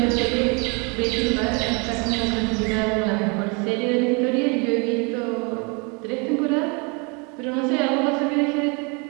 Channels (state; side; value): quieter; left; 32.0 dB